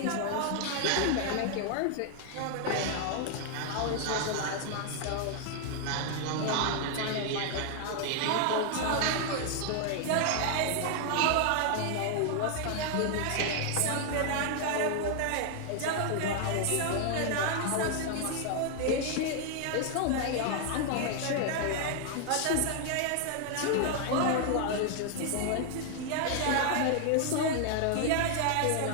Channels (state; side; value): different; both; correlation 0.00